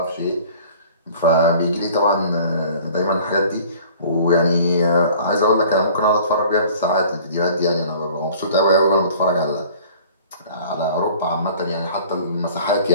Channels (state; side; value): inverted; both; correlation -0.49